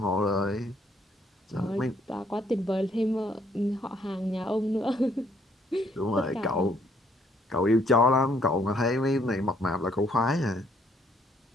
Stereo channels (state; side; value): normal; both; correlation 0.67